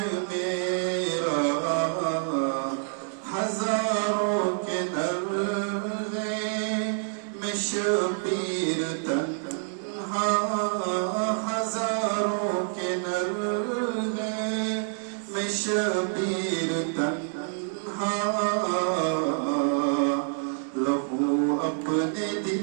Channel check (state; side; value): silent; left; digital silence